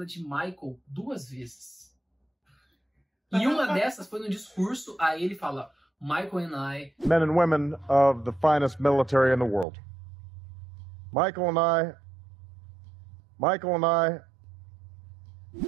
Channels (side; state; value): left; drops out; at 9.7 s